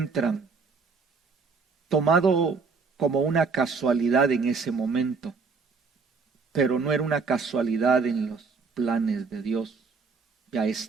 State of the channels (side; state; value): left; quieter; 4.8 dB